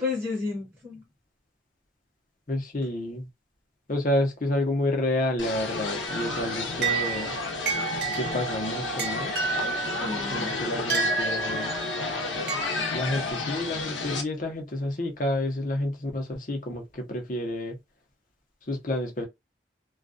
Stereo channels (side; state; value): both; normal; correlation 0.41